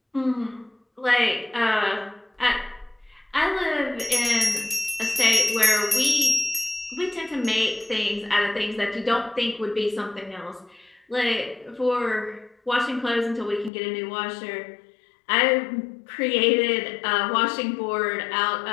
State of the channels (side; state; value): right; drops out; at 13.7 s